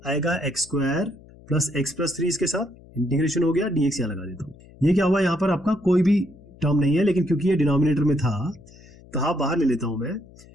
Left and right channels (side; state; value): left; noise; hum, 23 dB below the sound